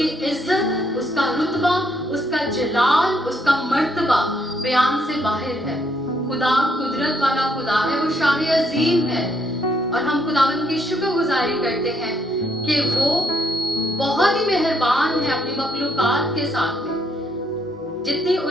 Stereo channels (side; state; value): both; normal; correlation 0.72